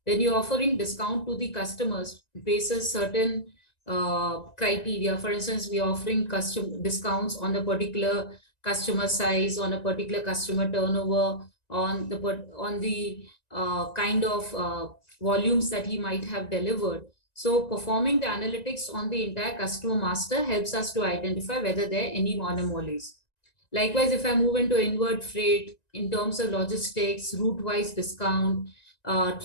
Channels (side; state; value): right; late; 1.9 ms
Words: When you're offering discount to the customers basis certain criteria, for instance, we are offering custom discounts on a particular customer size, on a particular customer turnover, on the kind of volumes that he might have delivered. So performing the analytics on the entire customer master helps us to identify whether there are any anomalies. Likewise, if I move into inward freight in terms of logistics, route-wise discount,